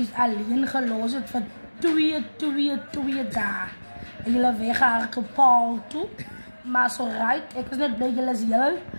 alleen gelos het vir 2 dae. En julle weggehardloop Paul toe. Maar so right, ek is net bly julle is heel.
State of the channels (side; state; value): both; inverted; correlation -1.00